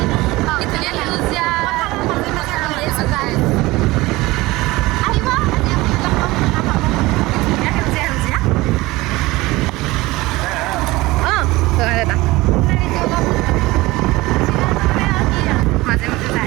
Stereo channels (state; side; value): quieter; left; 20.2 dB